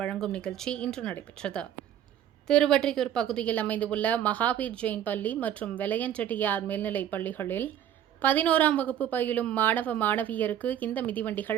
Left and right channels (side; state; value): left; quieter; 10.4 dB